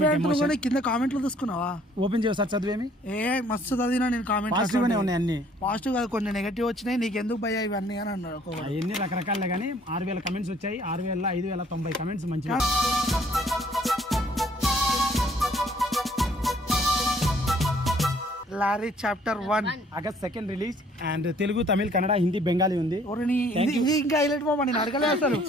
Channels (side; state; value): both; normal; correlation 0.60